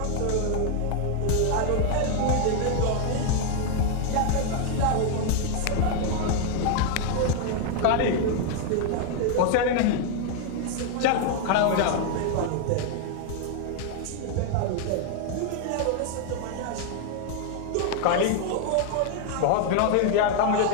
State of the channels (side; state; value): both; different; correlation 0.00